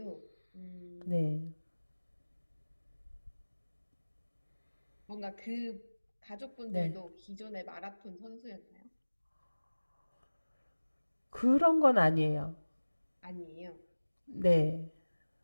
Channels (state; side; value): inverted; both; correlation -1.00